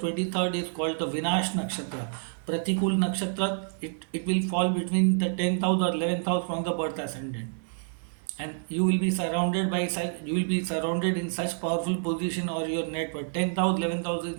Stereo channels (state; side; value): silent; left; digital silence